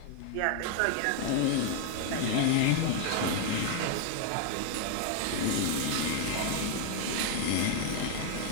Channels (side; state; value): both; different; correlation 0.00